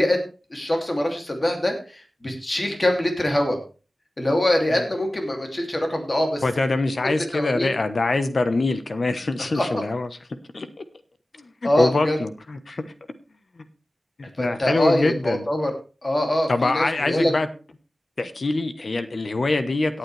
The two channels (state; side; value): normal; both; correlation 0.96